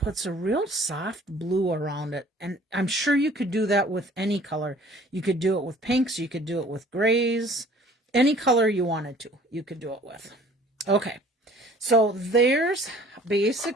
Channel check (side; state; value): both; normal; correlation 0.52